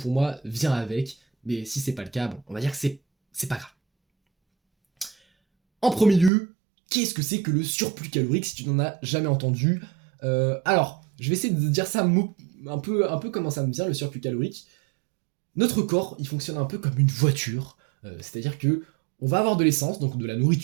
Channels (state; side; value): drops out; left; at 6.3 s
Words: moi vient avec, mais si c'est pas le cas, bon, on va dire que c'est pas grave. En premier lieu, qu'est-ce que c'est que le surplus calorique si tu n'en as jamais entendu? Alors, je vais essayer de dire ça un peu comment ça me vient le surplus calorique. Notre corps, il fonctionne un peu comme une voiture, c'est-à-dire que on va avoir de l'essence, donc de la